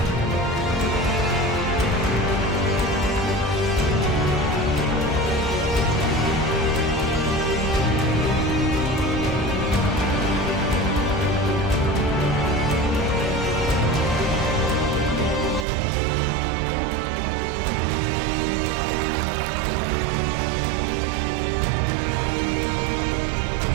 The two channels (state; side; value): drops out; left; at 15.7 s